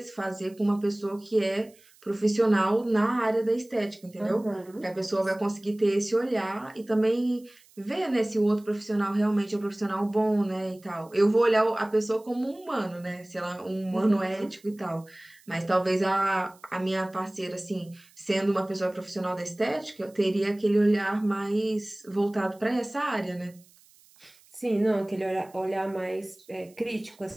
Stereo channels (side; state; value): right; noise; hiss, 28 dB below the sound